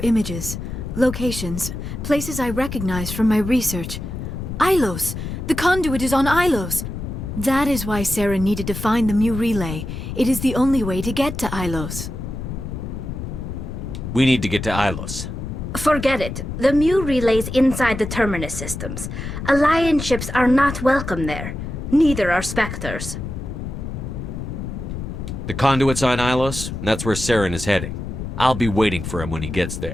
images, locations, places I recognized from my research. Ilos! The conduit is on Ilos! That is why Saren needed to find the Mu relay. It is the only way to get to Ilos. We need to get to Ilos. Forget it. The Mu relay's inside the Terminus systems. Alliance ships are not welcome there. Neither are Spectres. The conduit's on Ilos, and that's where Saren is heading. I'll be waiting for him when he gets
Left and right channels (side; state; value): left; noise; rumble, 6 dB below the sound